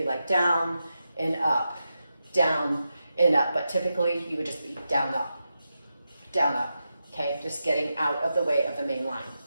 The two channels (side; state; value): both; inverted; correlation -0.88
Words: like down and up, down and up, but typically you would just be down, up, okay? Just getting out of the way of the main line.